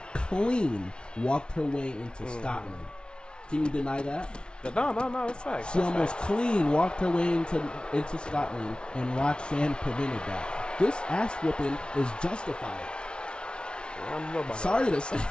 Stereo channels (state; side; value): late; right; 0.056 ms